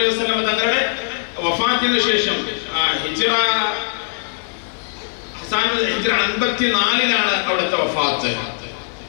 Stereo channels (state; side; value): silent; right; 58 dB below the other